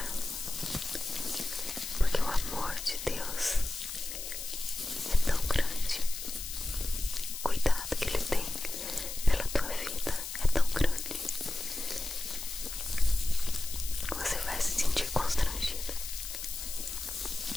porque o amor de Deus é tão grande, o cuidado que Ele tem pela tua vida é tão grande, você vai se sentir constrangido.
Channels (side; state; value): left; noise; hiss, 8 dB below the sound